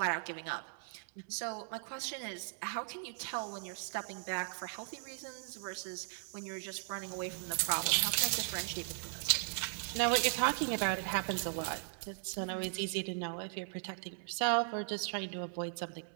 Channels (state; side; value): silent; left; 53 dB below the other